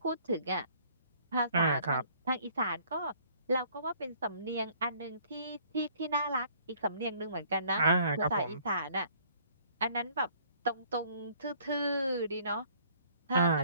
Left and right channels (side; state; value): both; inverted; correlation -0.59